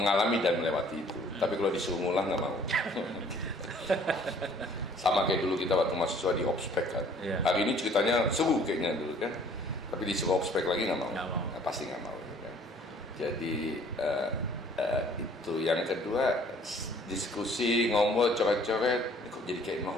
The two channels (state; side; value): normal; both; correlation 0.56